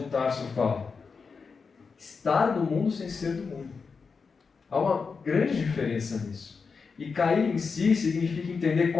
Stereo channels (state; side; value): quieter; right; 5.1 dB